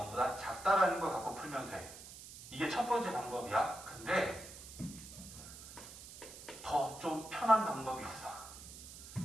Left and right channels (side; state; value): right; noise; hiss, 14 dB below the sound